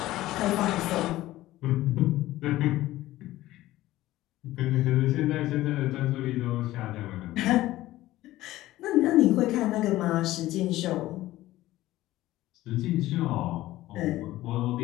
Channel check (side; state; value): right; quieter; 16.0 dB